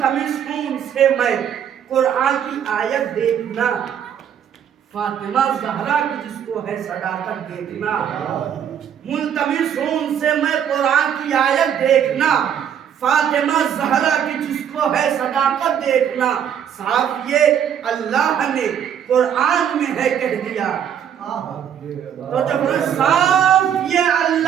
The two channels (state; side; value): quieter; left; 8.9 dB